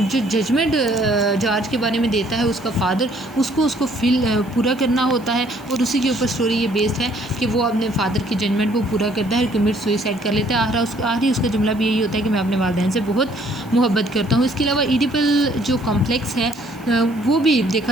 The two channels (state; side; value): noise; right; hiss, 26 dB below the sound